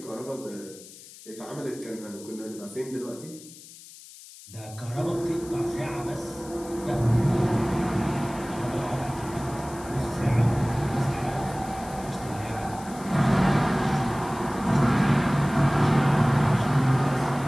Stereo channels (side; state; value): left; noise; hiss, 18 dB below the sound